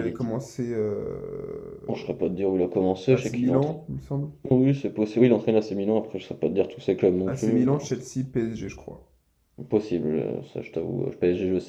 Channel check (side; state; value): both; identical; correlation 1.00